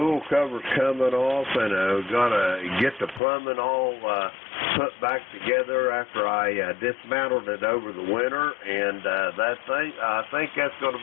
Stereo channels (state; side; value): drops out; right; at 3.2 s